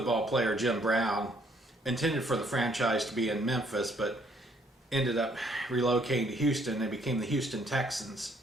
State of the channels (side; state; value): both; normal; correlation 0.66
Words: player Jim Brown, intended for the franchise to be in Memphis, but ended up relocating to Houston. They became the Houston Texans.